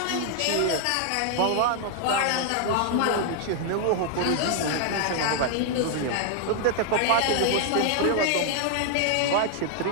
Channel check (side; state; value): both; different; correlation 0.00